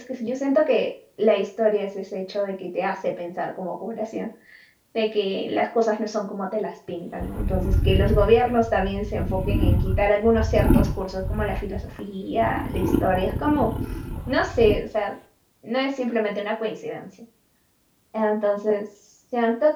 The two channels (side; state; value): both; identical; correlation 1.00